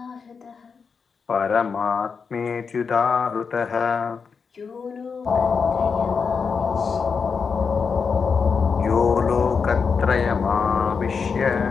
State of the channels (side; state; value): right; quieter; 5.6 dB